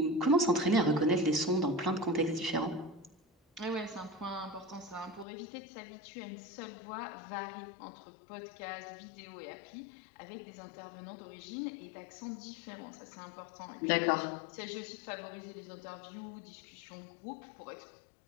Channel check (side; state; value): right; drops out; at 5.2 s